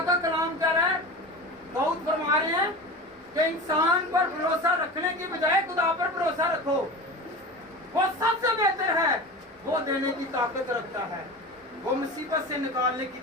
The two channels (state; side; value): normal; both; correlation 0.30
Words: का कलाम कह रहा है, दाऊद फरमा रहे हैं कि इंसान पर भरोसा रखने की बजाय खुदा पर भरोसा रखो, वो सबसे बेहतर है। वो देने की ताकत रखता है, वो मुसीबत से निकालने की